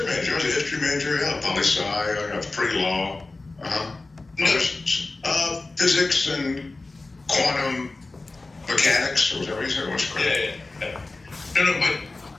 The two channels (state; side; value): quieter; right; 3.3 dB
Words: major? I was a history major. Yeah, poli-sci. I got pre-law. No. Physics and quantum mechanics, or whatever you said. What's correct? Yeah. No, but